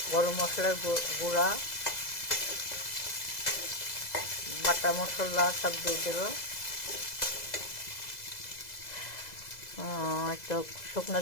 গরম মশলার গুঁড়া, বাটা মশলা সব দিয়ে দেবো। একটু শুকনো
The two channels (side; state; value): right; late; 2.0 ms